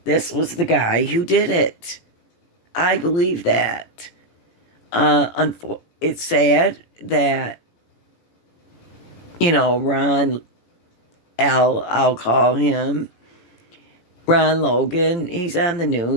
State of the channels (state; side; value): late; right; 17 ms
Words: this was the guy who did it. I believe that. It's sad that, I'll call him Ron Logan. He's on the